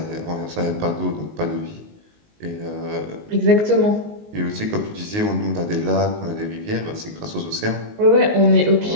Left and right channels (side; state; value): left; late; 19 ms